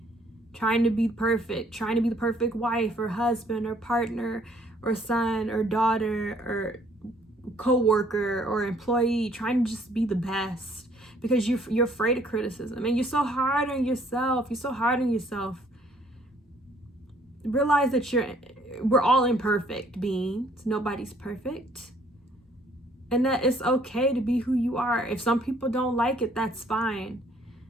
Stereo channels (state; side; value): normal; both; correlation 0.62